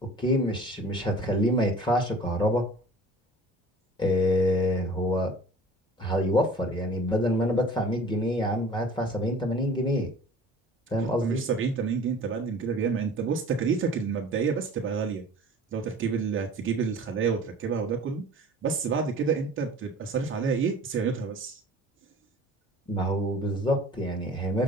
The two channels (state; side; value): normal; both; correlation 0.45